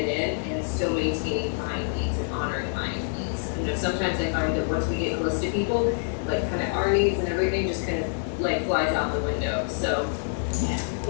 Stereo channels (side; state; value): right; silent; 60 dB below the other